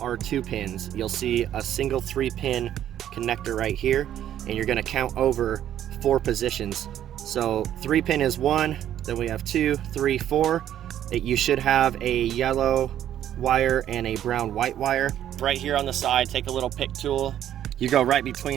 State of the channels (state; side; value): quieter; left; 11.2 dB